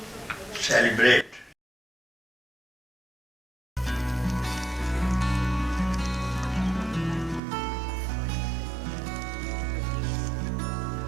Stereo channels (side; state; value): left; drops out; at 7.4 s